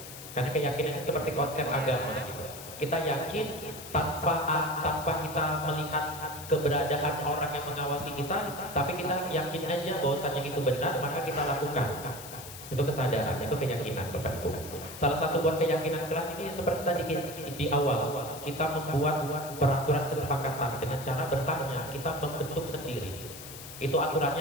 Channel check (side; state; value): left; noise; hiss, 13 dB below the sound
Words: Karena keyakinan itu seperti konsep agama gitu. Kita yakin tanpa kita melihat keberadaan orang yang mengawasi kita, tapi kita yakin aja bahwasanya itu benar, maka kita lakukan. Itu kesadaran, itu keyakinan Bapak Ibu. Salah satu buat keyakinan kelas ini seperti tadi di awal, kita membuat peraturan kesepakatan dengan cara bertanya, kita membentuk sendiri. Itu aturannya